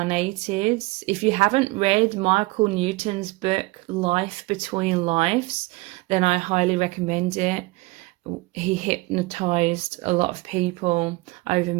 If you haven't read Michael Newton's book, Life Between Lives, then I highly recommend it. He hypnotized a lot of people over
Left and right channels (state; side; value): quieter; left; 23.1 dB